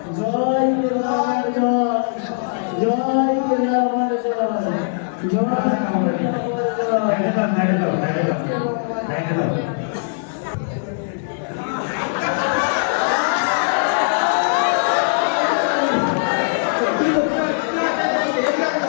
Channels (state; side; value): silent; right; digital silence